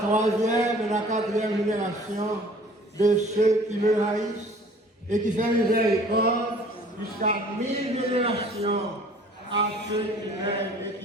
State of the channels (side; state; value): both; normal; correlation 0.51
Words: et la 4e génération de ceux qui me haïssent, et qui fait miséricorde jusqu'à 1000 générations à ceux qui m'aiment et